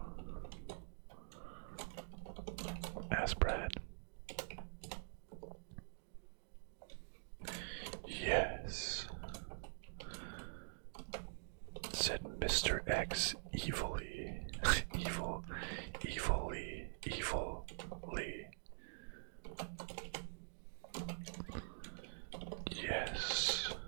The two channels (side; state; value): left; silent; digital silence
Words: Asked Brad. Yes, said Mr. X evilly. evilly. Yes.